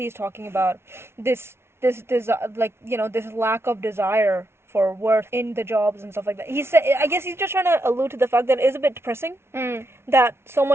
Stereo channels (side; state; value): left; late; 0.12 ms